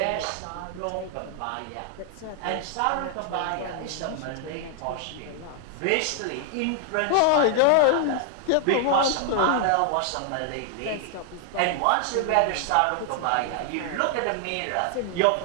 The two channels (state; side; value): different; both; correlation 0.00